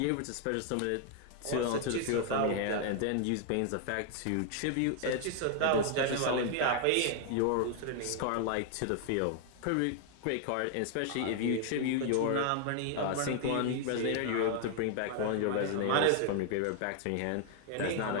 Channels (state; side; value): different; both; correlation 0.00